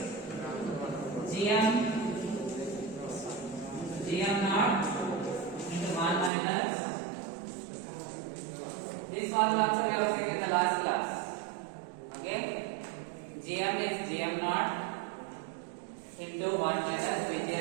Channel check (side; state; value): left; drops out; at 6.3 s